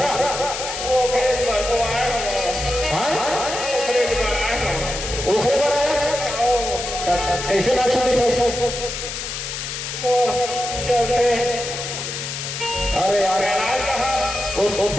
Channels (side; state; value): left; noise; hiss, 6 dB below the sound